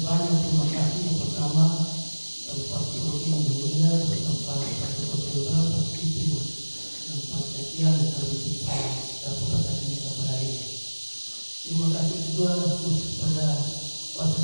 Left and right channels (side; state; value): both; inverted; correlation -1.00